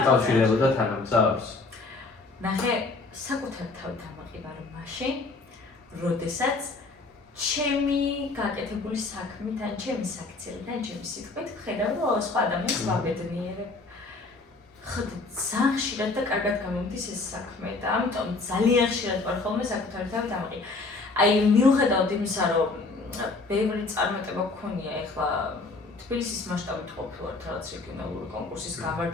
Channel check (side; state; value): right; quieter; 3.6 dB